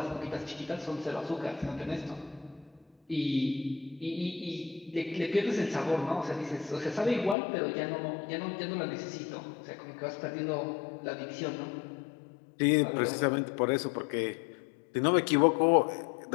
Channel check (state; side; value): drops out; right; at 7.4 s